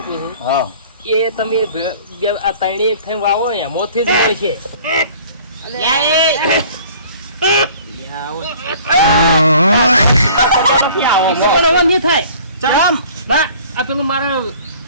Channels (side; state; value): both; inverted; correlation -0.50